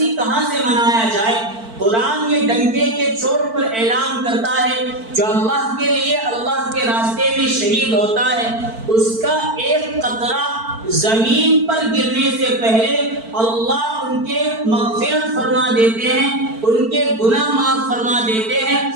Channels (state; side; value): late; left; 4.5 ms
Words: کہاں سے منایا جائے؟ قرآن یہ ڈنکے کے چوٹ پر اعلان کرتا ہے جو اللہ کے لیے اللہ کے راستے میں شہید ہوتا ہے، اس کا ایک قطرہ زمین پر گرنے سے پہلے اللہ ان کے مغفرت فرما دیتے ہیں، ان کے گناہ معاف فرما دیتے ہیں،